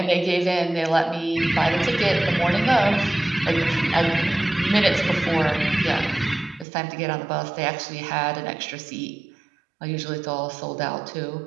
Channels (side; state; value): left; drops out; at 6.7 s